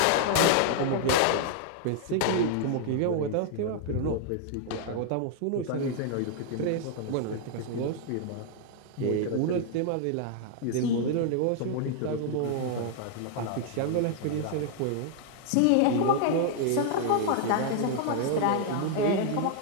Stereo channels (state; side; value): different; both; correlation 0.00